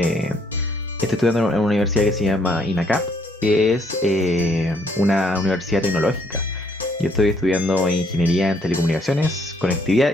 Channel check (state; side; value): normal; both; correlation 0.68